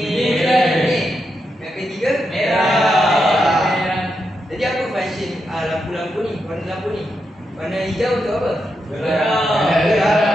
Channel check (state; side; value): normal; both; correlation 0.84